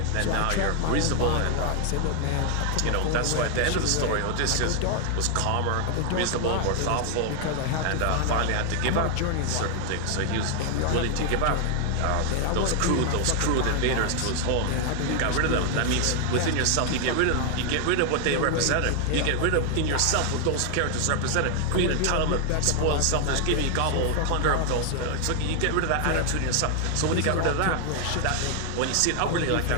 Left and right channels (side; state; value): both; different; correlation 0.00